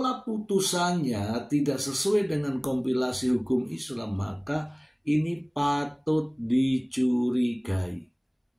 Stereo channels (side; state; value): both; identical; correlation 1.00